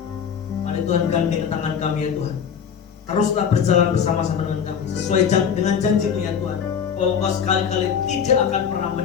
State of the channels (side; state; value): right; quieter; 7.5 dB